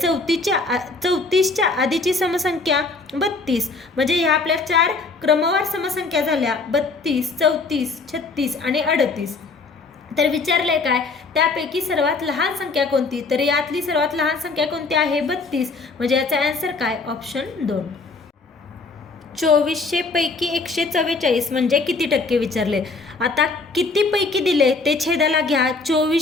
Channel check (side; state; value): right; quieter; 3.9 dB